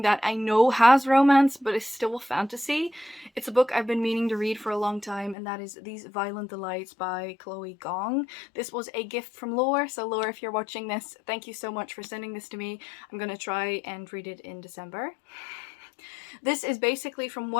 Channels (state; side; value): drops out; right; at 5.4 s